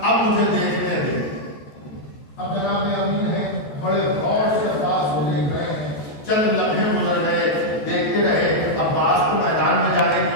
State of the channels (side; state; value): right; late; 14 ms